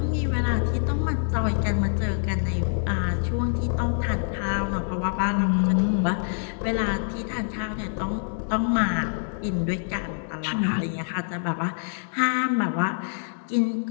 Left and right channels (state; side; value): silent; right; digital silence